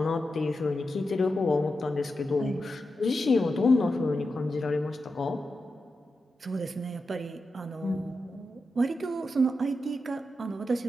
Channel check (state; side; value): normal; both; correlation 0.89